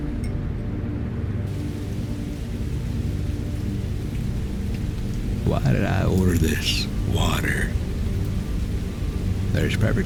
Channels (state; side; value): identical; both; correlation 1.00